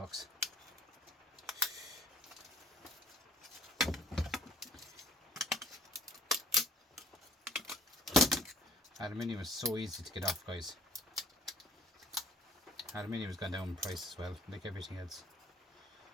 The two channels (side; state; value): both; normal; correlation 0.56